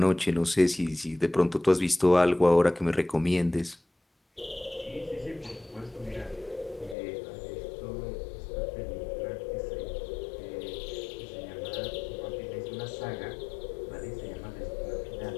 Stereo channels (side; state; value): right; drops out; at 7.0 s